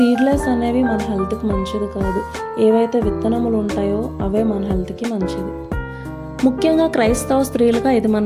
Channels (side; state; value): both; identical; correlation 1.00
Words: అనేవి మన హెల్త్కి మంచిది కాదు. ఏవైతే విత్తనములు ఉంటాయో అవే మన హెల్త్కి మంచిది. ముఖ్యంగా క్రైస్తవ స్త్రీలుగా ఇది మన